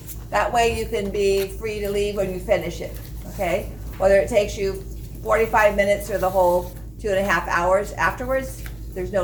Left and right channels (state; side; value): noise; right; rumble, 24 dB below the sound